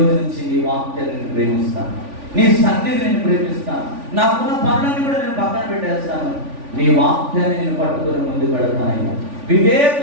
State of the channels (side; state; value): left; late; 3.5 ms